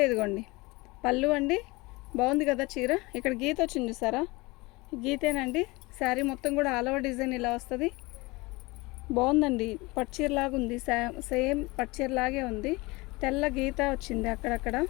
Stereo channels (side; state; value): right; quieter; 23.6 dB